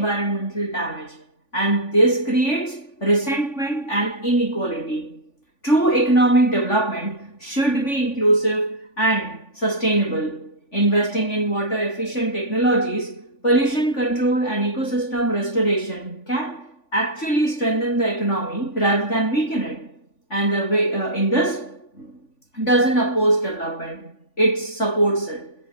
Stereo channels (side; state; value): right; late; 3.5 ms